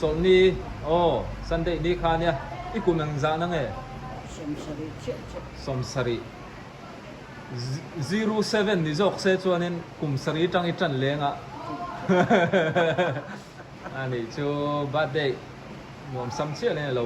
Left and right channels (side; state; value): both; identical; correlation 1.00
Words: sunday ni kha nia ikumang za na nge somsari 07 ni jok se chuanin kumsari tang I tan lenga ani chu birthday mom sam chia le lo